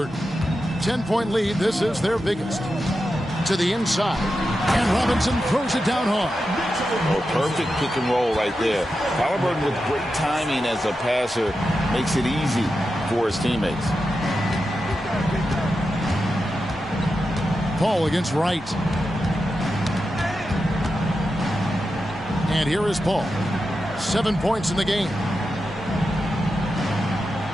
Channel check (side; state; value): both; normal; correlation 0.89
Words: 10-point lead. This is their biggest. To the inside. And Robinson throws it down hard. Oh, perfect pick and roll right there. Halliburton with great timing as a passer makes it easy for his teammates. Paul against Wright. And here is Paul. 7 points in the game.